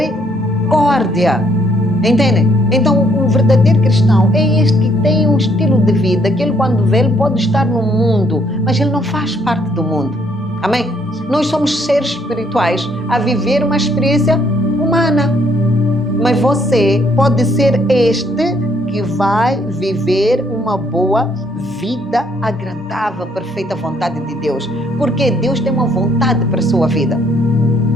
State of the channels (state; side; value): normal; both; correlation 0.68